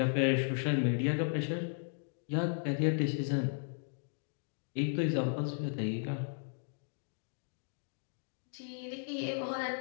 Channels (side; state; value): right; silent; digital silence